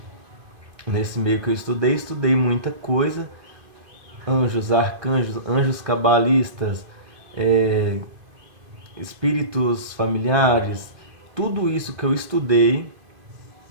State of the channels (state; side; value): late; left; 2.5 ms